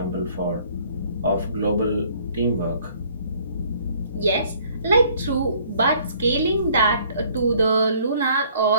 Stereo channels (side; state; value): both; inverted; correlation -0.59